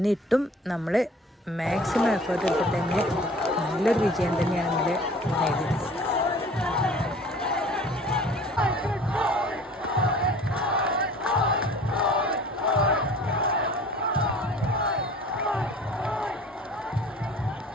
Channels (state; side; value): normal; both; correlation 0.47